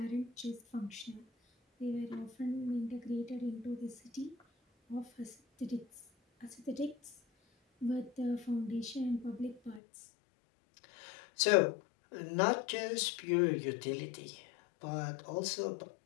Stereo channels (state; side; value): drops out; right; at 9.8 s